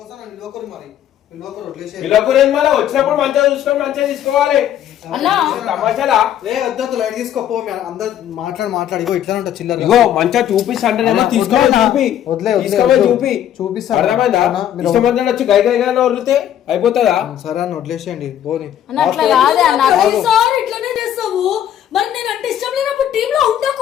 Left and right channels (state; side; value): quieter; right; 10.8 dB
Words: నిలవకరు. మరి మళ్ళీ వచ్చినప్పుడు మంచిగా చూసుకొని మంచిగా తీసుకోవాలి. తమాషాలా? వద్దు లైట్ తీసుకోపో. అందరు మాట్లాడి ఇట్లా ఉంటా చిల్లర. ఇగో మంచిగా చూపిస్తా అంటేనేమో తీసుకోవాలి. చూపిస్తాను. అర్థమైందా? ఇష్టమంతా వచ్చి గై గైగా వదిలితే అయిపోతుందా? సరే అని వదిలేసేయండి పోనీ. ఇట్లానే చేస్తావు. మరి నేను అంటే ఇష్టం లేనప్పుడు టీమ్ లో